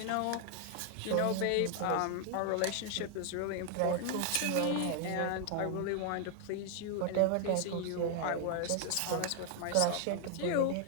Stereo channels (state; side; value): different; both; correlation 0.00